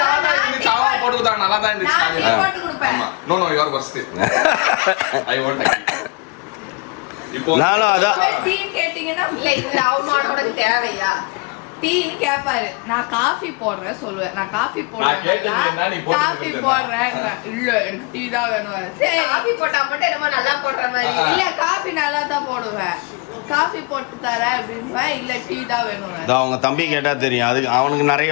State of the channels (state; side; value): quieter; right; 30.4 dB